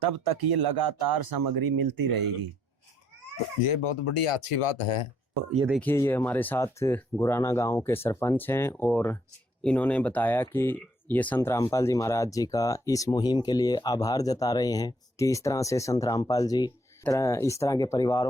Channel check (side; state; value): both; normal; correlation 0.69